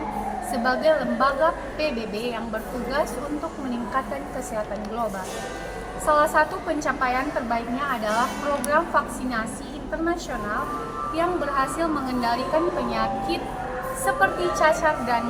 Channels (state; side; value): identical; both; correlation 1.00